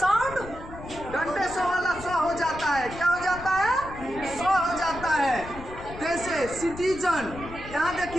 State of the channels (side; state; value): left; noise; rumble, 14 dB below the sound